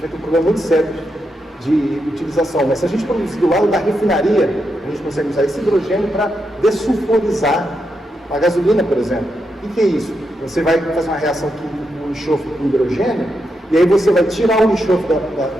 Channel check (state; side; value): normal; both; correlation 0.84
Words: vai ter um problema muito sério de utilização, mas se a gente produzir do lado da refinaria, a gente consegue usar esse hidrogênio para dessulfurizar a gasolina, por exemplo. O que é isso? Você vai fazer uma reação química com o enxofre com hidrogênio, e aí você vai tirar o enxofre